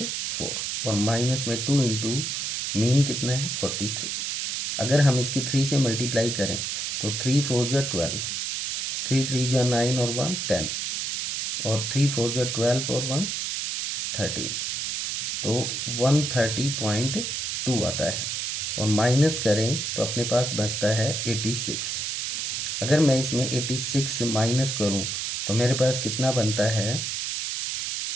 और माइनस में 2 इंटू मीन कितना है? 43। अगर हम इसकी 3 से मल्टीप्लाई करें तो 3 4 जा 12, 3 3 जा 9 और 1 10, और 3 4 जा 12 और 1 13, तो 130.2 आता है। और माइनस करें तो अपने पास बचता है 86। अगर मैं इसमें 86 माइनस करूं तो मेरे पास कितना बनता है?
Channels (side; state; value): right; noise; hiss, 2 dB below the sound